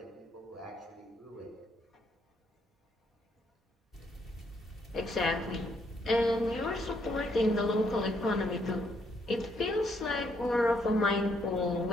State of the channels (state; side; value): normal; both; correlation 0.72